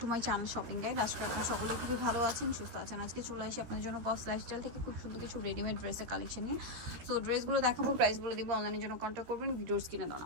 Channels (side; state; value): left; late; 13 ms